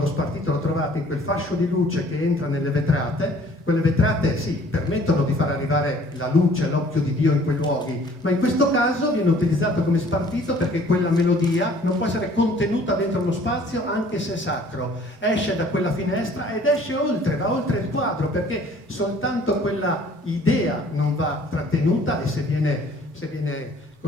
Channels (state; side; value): normal; both; correlation 0.55